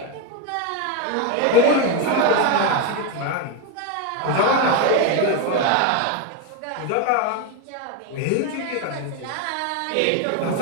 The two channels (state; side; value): different; both; correlation 0.03